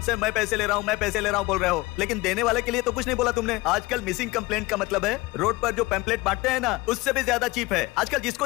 से मैं पैसे ले रहा हूँ, मैं पैसे ले रहा हूँ बोल रहे हो, लेकिन देने वाले के लिए तो कुछ नहीं बोला तुमने। आजकल मिसिंग कंप्लेंट का मतलब है रोड पर जो पैम्पलेट बांटते हैं ना, उससे भी ज्यादा चीप है। आजकल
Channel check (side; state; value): right; quieter; 21.7 dB